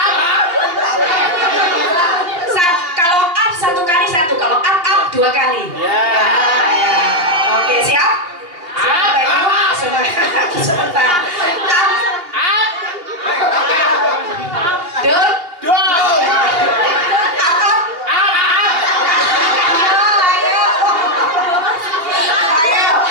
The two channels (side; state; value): left; late; 2.8 ms